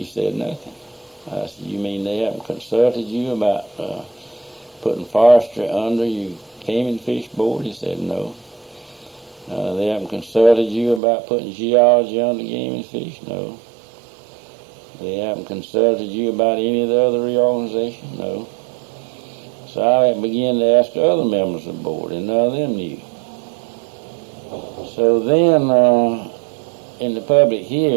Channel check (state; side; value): drops out; left; at 11.0 s